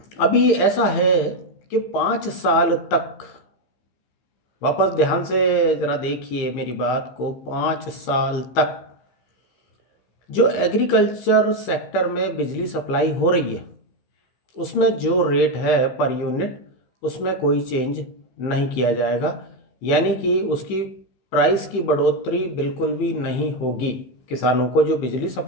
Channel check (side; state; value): right; late; 15 ms